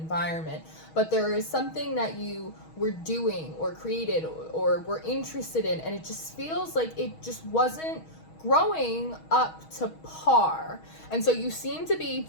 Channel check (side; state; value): right; late; 6.3 ms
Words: But there is something that you were doing or created or were interested in, and it just feels like it just wasn't growing up to par. And so you seem to be